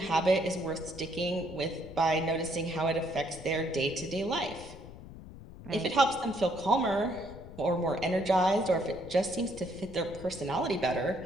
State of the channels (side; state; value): left; noise; rumble, 15 dB below the sound